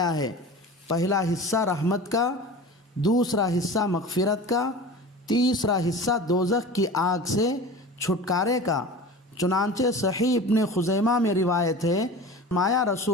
ہے۔ پہلا حصہ رحمت کا، دوسرا حصہ مغفرت کا، تیسرا حصہ دوزخ کی آگ سے چھٹکارے کا۔ چنانچہ صحیح ابن خزیمہ میں روایت ہے، مایا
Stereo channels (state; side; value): normal; both; correlation 0.35